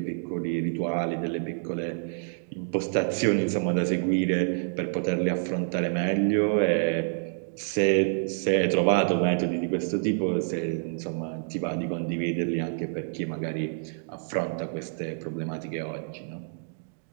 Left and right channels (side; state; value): left; silent; digital silence